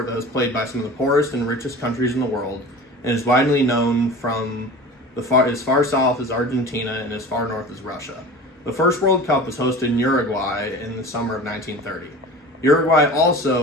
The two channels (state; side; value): normal; both; correlation 0.37